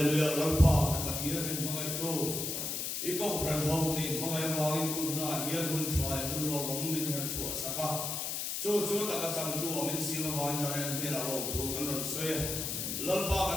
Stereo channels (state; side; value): noise; left; hiss, 2 dB below the sound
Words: Lalpa Pathian in mga ito Ikaw pran hau din mga wangin tu na hiyan hun chwa hun lo min her chwa saka chu ta ka chang tu min si ma wan jare ni la lo thu kan ron soe lalpa